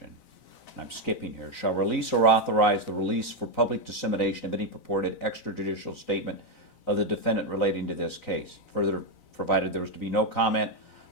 and I'm skipping here, shall release or authorize the release for public dissemination of any purported extrajudicial statement of the defendant relating to this case. Further, provided there was to be no comment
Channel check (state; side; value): late; right; 3.9 ms